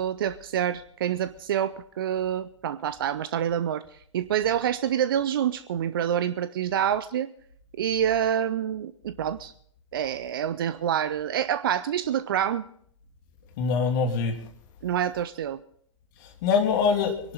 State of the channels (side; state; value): left; quieter; 4.6 dB